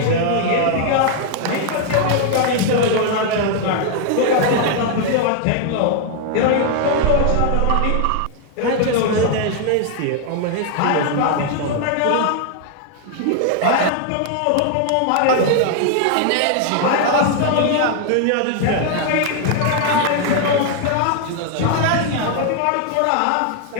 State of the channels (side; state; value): both; different; correlation 0.00